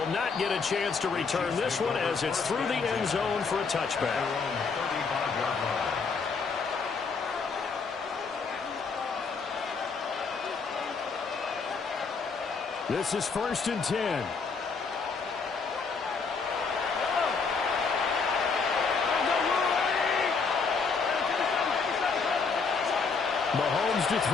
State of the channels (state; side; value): quieter; right; 5.0 dB